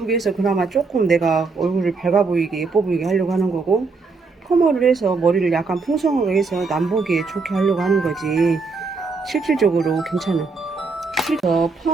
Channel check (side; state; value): left; quieter; 4.3 dB